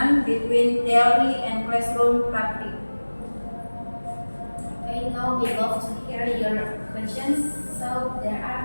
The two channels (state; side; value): inverted; both; correlation -1.00